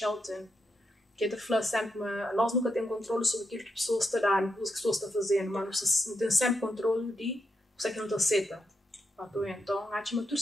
que é de falar sempre, nós nunca temos controle sobre aquilo que a pessoa está dando, aquilo que a pessoa está fazendo, mas não tem sempre controle de o que não está aceita. Então, acho que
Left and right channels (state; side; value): normal; both; correlation 0.83